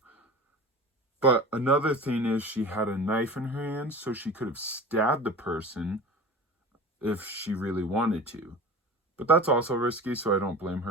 But another thing is, she had a knife in her hand, so she could have stabbed the person if she really wanted to. But that's also risky, so I don't blame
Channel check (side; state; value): both; normal; correlation 0.35